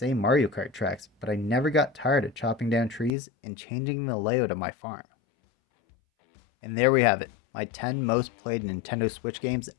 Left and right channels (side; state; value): right; drops out; at 3.1 s